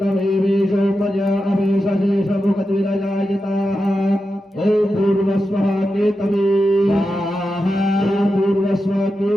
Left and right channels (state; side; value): normal; both; correlation 0.90